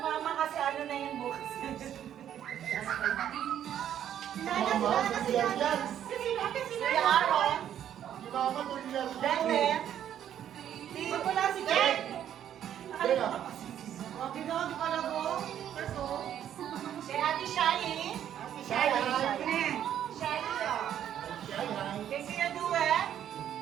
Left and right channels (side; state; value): left; quieter; 10.3 dB